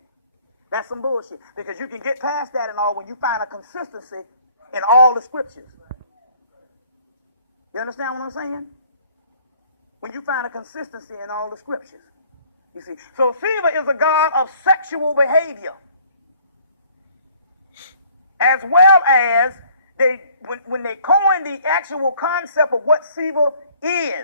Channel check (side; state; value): both; inverted; correlation -0.58